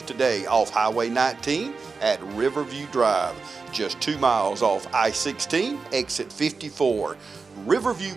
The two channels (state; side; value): quieter; left; 4.5 dB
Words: today off Highway 19 at Riverview Drive, just 2 miles off I-16, exit 54. Riverview